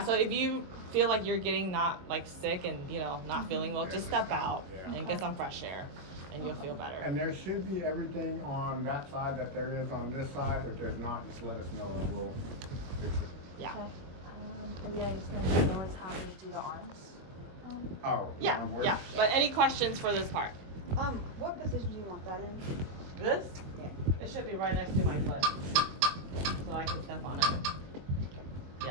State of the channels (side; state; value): left; late; 22 ms